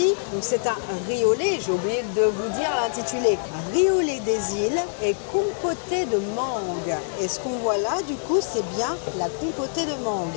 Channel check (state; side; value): silent; right; digital silence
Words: Donc c'est un riz au lait, j'ai oublié de vous dire l'intitulé. Riz au lait des îles et compoté de mangue. Et ce qu'on voit là, du coup, c'est bien la compotée de